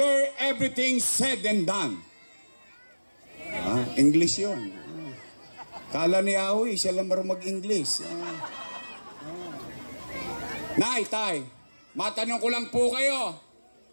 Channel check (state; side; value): inverted; both; correlation -1.00